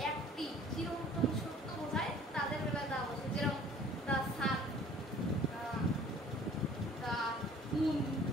একটি চিরন্তন সত্য বোঝায় তাদের বেলায় দা বসে, যেরকম দ্য সান, দ্য মুন,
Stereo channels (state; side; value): normal; both; correlation 0.51